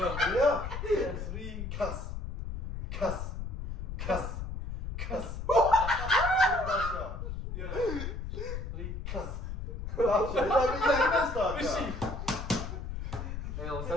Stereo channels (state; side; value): noise; left; rumble, 5 dB below the sound